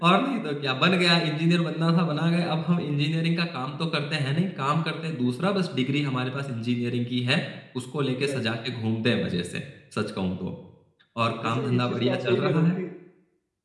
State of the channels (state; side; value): identical; both; correlation 1.00